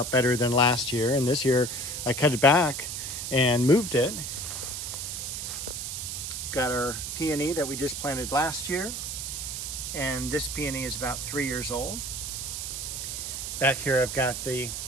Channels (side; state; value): right; noise; hiss, 5 dB below the sound